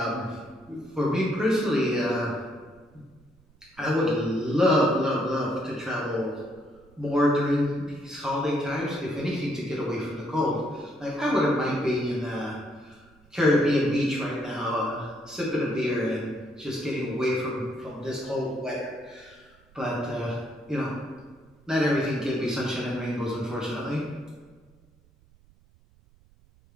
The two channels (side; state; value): right; noise; rumble, 29 dB below the sound